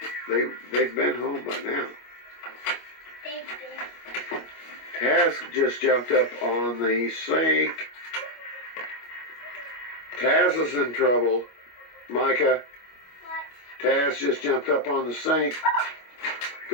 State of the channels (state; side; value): late; right; 25 ms